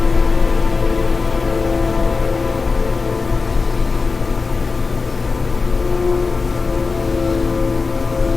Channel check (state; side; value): quieter; right; 4.2 dB